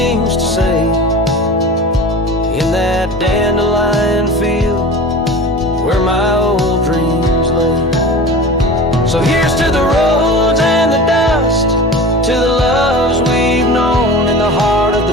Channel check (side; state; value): both; normal; correlation 0.35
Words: to say, in that dandelion field where my old dreams lay. So here's to the roads and the